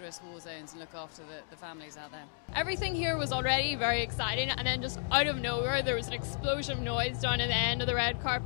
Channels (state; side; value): silent; right; digital silence